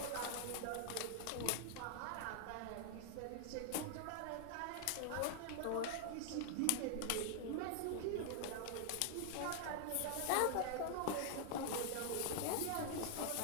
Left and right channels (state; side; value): different; both; correlation 0.00